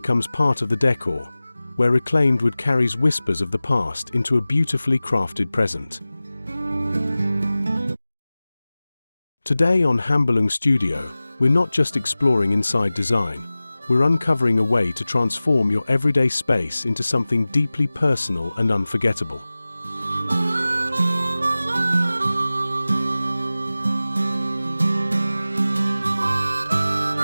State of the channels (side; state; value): both; inverted; correlation -0.97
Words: part of the decor, where reclaimed wood carries whispers of the past into a beautifully crafted present. Today on Hambalung Studio, we're not just exploring inside design, we're uncovering a way to transform your everyday space into something deeply personal and unforgettable.